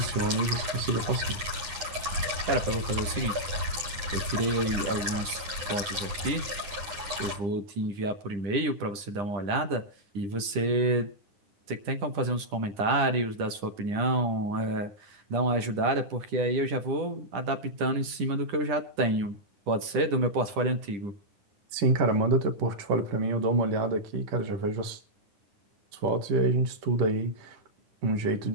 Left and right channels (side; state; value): left; late; 10 ms